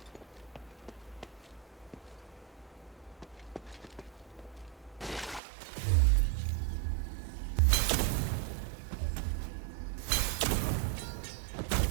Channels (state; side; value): drops out; left; at 5.4 s